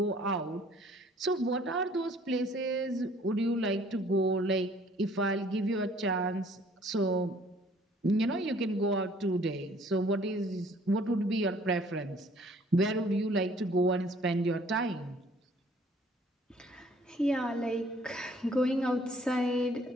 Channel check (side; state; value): both; normal; correlation 0.58